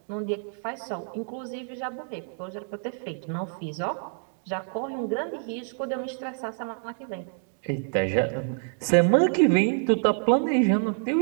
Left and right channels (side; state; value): left; silent; 60 dB below the other